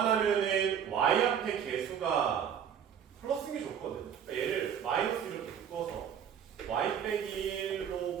y 앞에 개수가 플러스인 게 좋거든. 그러니까 얘를 마이너스 이렇게 묶어서 y 빼기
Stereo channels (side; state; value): left; quieter; 8.4 dB